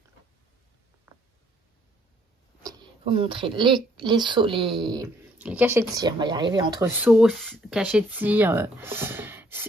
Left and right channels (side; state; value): both; normal; correlation 0.65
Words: vous montrer les les cachets de cire. On va y arriver entre sauce, cachets de cire,